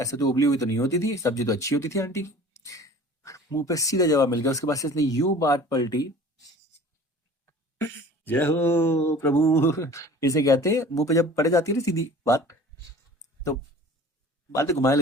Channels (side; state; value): both; normal; correlation 0.44